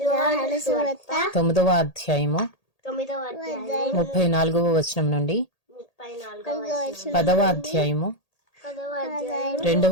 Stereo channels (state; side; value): late; right; 1.8 ms